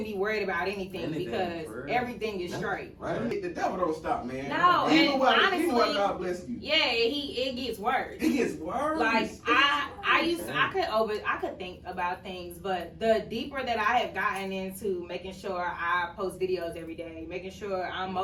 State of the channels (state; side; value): identical; both; correlation 1.00